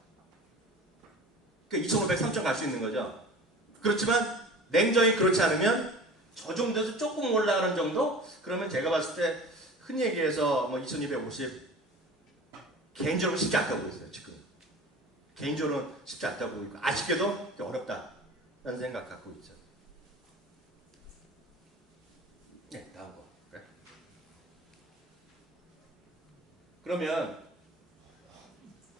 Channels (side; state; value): both; normal; correlation 0.39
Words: 그러니까 2,500, 3,000 갈 수 있는 거죠. 그렇지만 냉정히 그렇지 않으면 저 정도에서 조금 올라가는 정도? 그러면 제가 봤을 때 흔히 얘기해서 뭐 2,250 개인적으로 쉽지 않다고 보고 있어요. 지금 개인적으로는 쉽지 않다고 보고 있고 아쉽게도 어렵다라는 생각 갖고 있죠. 네, 다음 거. 그래. 그러면